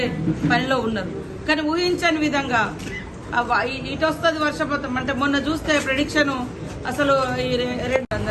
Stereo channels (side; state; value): both; identical; correlation 1.00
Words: పనిలో ఉన్నారు. కానీ ఊహించని విధంగా ఇటు వస్తుంది వర్షపాతం అంటే మొన్న చూస్తే ప్రెడిక్షన్ అసలు